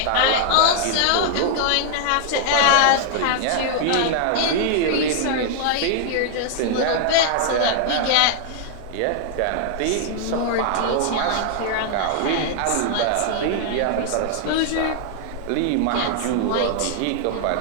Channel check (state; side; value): different; both; correlation 0.00